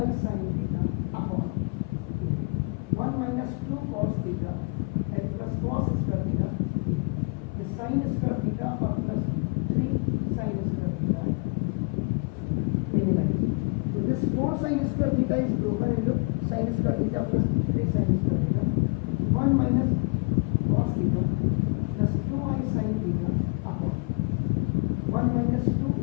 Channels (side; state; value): right; quieter; 31.8 dB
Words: sin theta upon 1 minus 2 cos theta and plus cos square theta इस sin स्क्वायर थीटा और plus 3 sin square theta minimize. तो this 4 sin square theta is broken into sin square theta plus 3 sin square theta, 1 minus cos theta plus 2i sin theta upon 1 minus 2